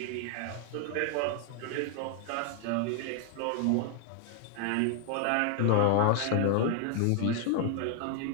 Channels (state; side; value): different; both; correlation 0.00